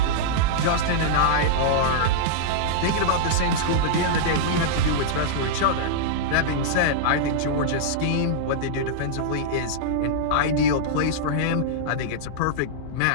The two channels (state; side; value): different; both; correlation -0.02